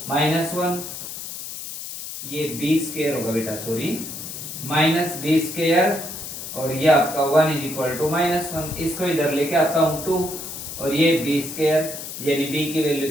-1, ये b स्क्वायर होगा बेटा सॉरी, माइनस b स्क्वायर और ये आपका 1 इज इक्वल टू -1। इसको इधर लेके आता हूं 2 और ये b स्क्वायर, यानी b की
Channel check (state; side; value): noise; left; hiss, 9 dB below the sound